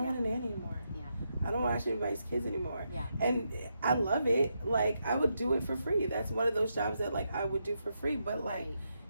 want a nanny anymore. I don't watch anybody's kids anymore. And I love it. Like I would do it for free. That's one of those jobs that like I would do for free, but like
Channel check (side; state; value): both; inverted; correlation -0.82